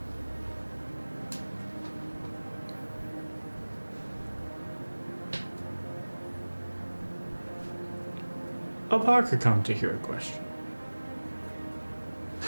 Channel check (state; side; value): inverted; both; correlation -1.00